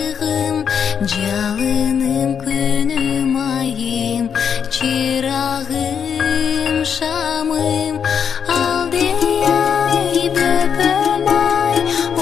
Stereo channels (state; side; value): quieter; right; 7.4 dB